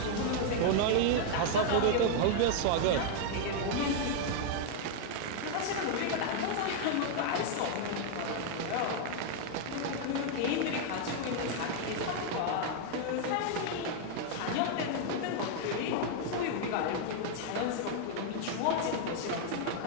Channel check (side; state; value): both; different; correlation 0.00